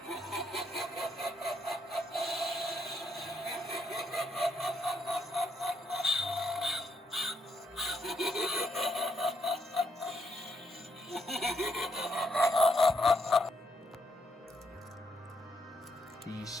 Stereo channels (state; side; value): normal; both; correlation 0.76